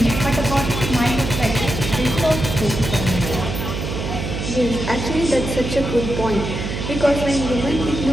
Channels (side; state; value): right; noise; hum, 4 dB below the sound